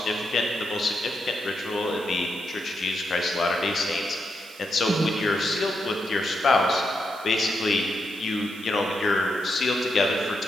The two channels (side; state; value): right; noise; hiss, 21 dB below the sound